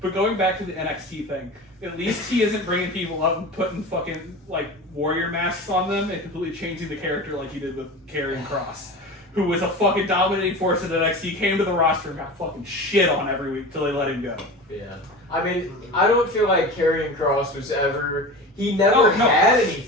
But going back to the NXT thing, at least he isn't bringing people up and putting fucking like warrior masks on them and completely changing the character like he did with Karrion Kross, who was a fucking dominating force in NXT, came to the roster and got fucking shit on every week till they let him go. Yeah. I mean, I don't feel like Karrion Kross was ever. He never No, had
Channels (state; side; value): normal; both; correlation 0.31